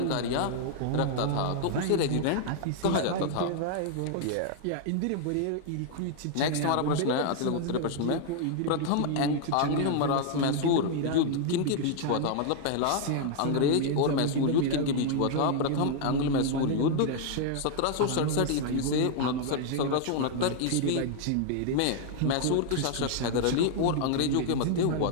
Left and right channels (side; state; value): both; different; correlation 0.00